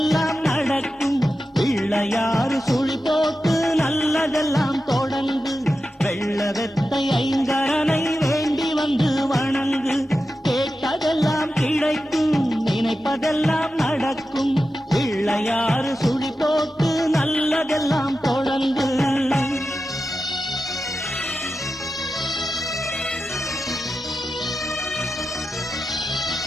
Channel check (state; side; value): normal; both; correlation 0.91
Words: நடக்கும். பிள்ளையாறு சுழி போட்டு நல்லதெல்லாம் தொடங்கு, வெள்ள வெத்தை ஐங்கரனை வேண்டி வந்து வணங்கு, கேட்டதெல்லாம் கிடைக்கும், நினைப்பதெல்லாம் நடக்கும். பிள்ளையாறு சுழி போட்டு நல்லதெல்லாம் தொடங்கு.